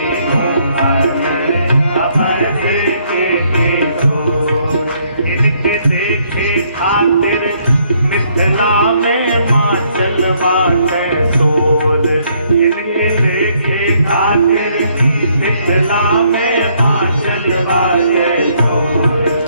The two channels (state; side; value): inverted; both; correlation -0.69